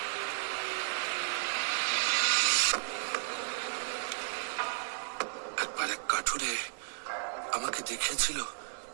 একবার এক কাঠুরে আমাকে দেখিয়েছিল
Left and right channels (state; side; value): silent; left; 55 dB below the other